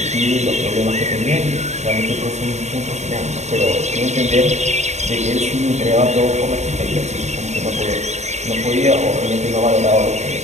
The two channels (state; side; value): late; left; 0.33 ms